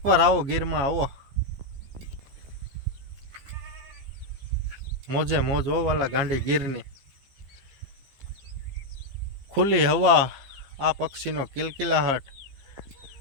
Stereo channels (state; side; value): late; left; 15 ms